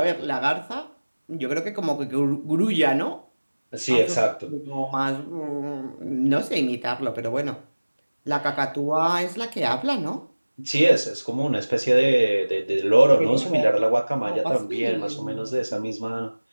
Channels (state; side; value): inverted; both; correlation -1.00